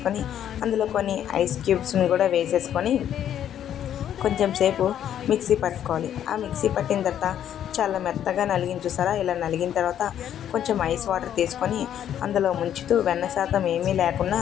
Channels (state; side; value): quieter; right; 10.2 dB